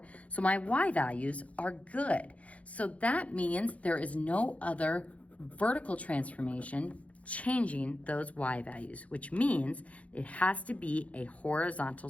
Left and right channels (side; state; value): right; late; 0.065 ms